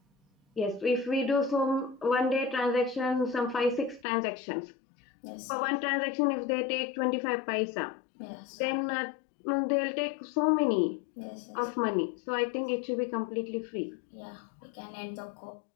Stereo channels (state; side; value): drops out; right; at 4.0 s